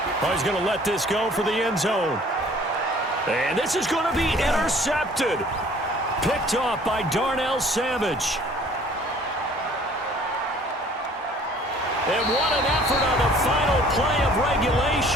Oh, he's going to let this go for the end zone. And this is going to be intercepted. Picked off by Darnell Savage. And what an effort on the final play of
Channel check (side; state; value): both; normal; correlation 0.54